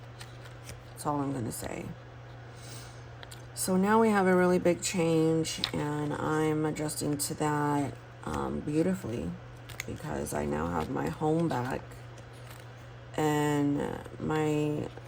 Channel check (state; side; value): identical; both; correlation 1.00